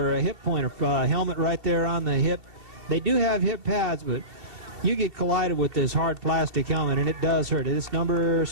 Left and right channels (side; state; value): left; late; 2.7 ms